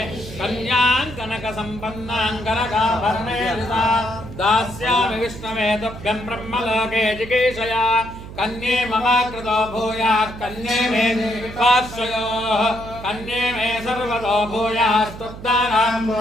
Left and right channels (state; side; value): noise; right; hum, 13 dB below the sound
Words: కన్యాం కనక సంపన్నాం కనకాభరణేన దాస్యామి విష్ణవే తుభ్యం బ్రహ్మలోకే జిగీషయా కన్యే మమ కృతో భూయాత్ కన్యే మే పార్శ్వయోః కన్యే మే సర్వతో భూయాస్తుబ్దానాం